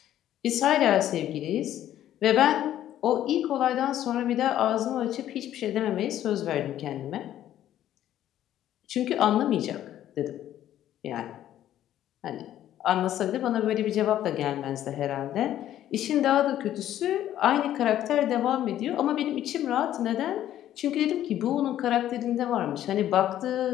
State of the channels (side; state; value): right; quieter; 12.0 dB